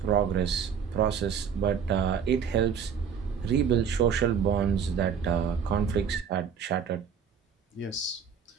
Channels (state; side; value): quieter; left; 7.2 dB